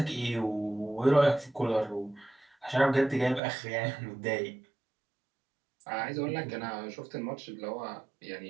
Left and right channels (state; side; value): drops out; left; at 3.4 s